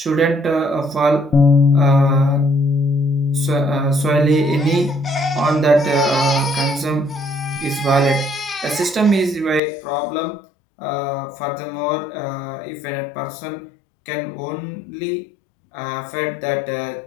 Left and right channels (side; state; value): right; drops out; at 9.6 s